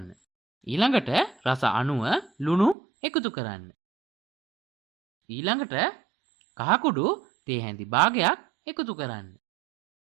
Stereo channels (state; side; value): drops out; left; at 2.8 s